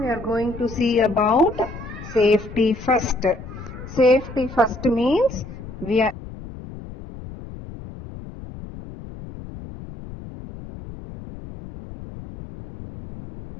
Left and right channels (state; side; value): noise; left; rumble, 13 dB below the sound